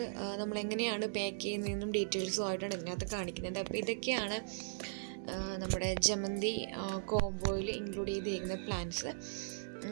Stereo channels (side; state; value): left; silent; digital silence